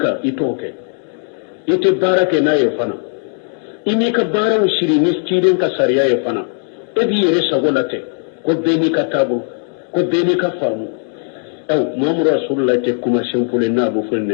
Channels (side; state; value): right; silent; 55 dB below the other